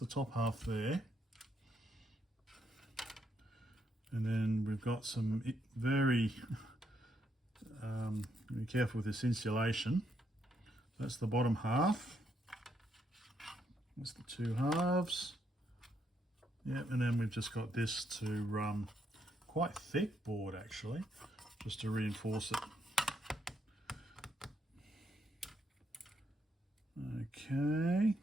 top half there. And then we've got some very, be careful with this insulation. That's the bottom half. That's the two halves. Yep, and then we've just got this to quite thick board actually, just to reinforce it. Okay,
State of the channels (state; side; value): normal; both; correlation 0.76